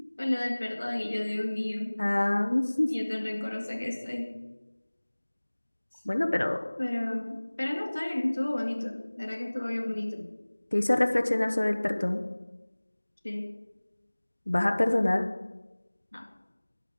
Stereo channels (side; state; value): both; inverted; correlation -1.00